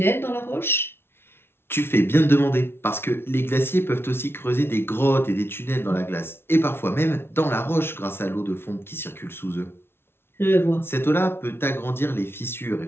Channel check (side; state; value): right; late; 0.12 ms